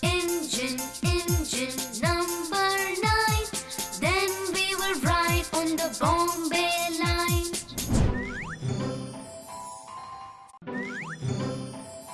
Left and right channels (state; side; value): identical; both; correlation 1.00